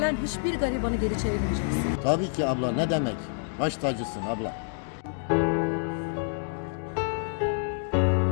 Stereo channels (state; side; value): silent; right; digital silence